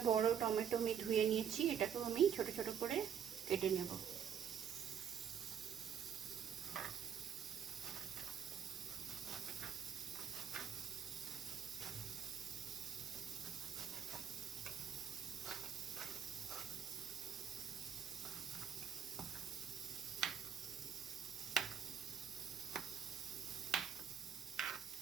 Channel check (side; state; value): left; quieter; 8.3 dB